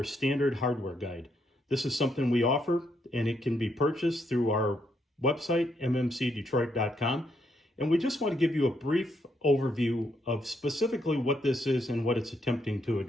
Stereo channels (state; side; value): normal; both; correlation 0.76